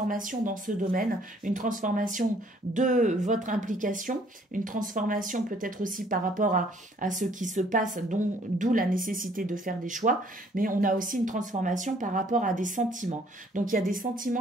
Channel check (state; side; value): normal; both; correlation 0.61